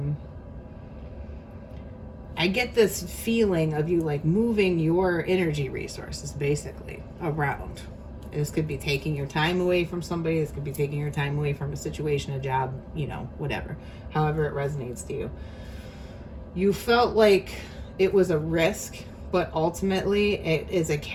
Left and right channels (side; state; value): both; identical; correlation 1.00